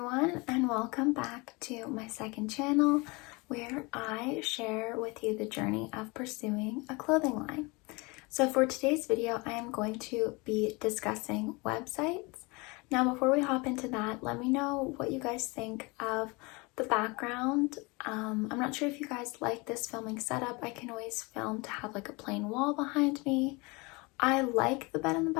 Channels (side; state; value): right; quieter; 26.6 dB